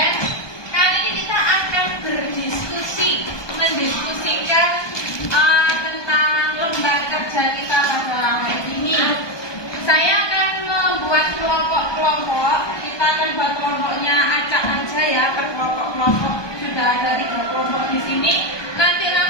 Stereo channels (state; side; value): late; right; 1.2 ms